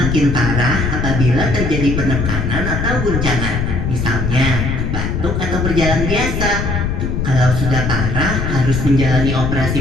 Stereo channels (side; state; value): left; noise; rumble, 1 dB below the sound